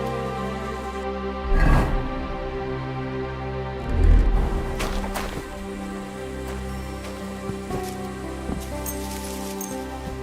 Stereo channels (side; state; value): both; identical; correlation 1.00